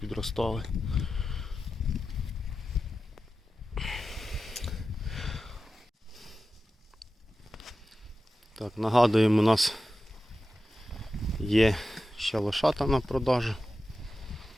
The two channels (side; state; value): both; normal; correlation 0.93